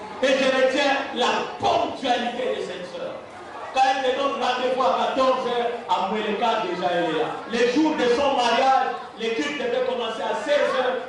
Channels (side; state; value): both; identical; correlation 1.00